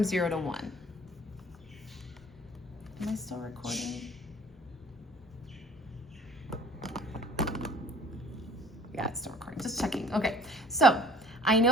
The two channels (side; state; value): both; normal; correlation 0.49